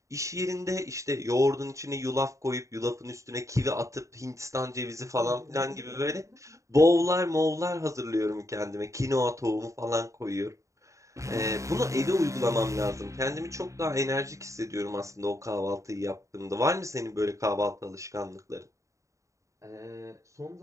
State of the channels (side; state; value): left; late; 0.15 ms